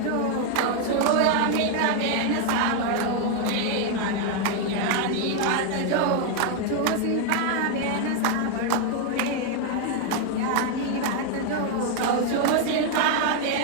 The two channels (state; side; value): different; both; correlation 0.01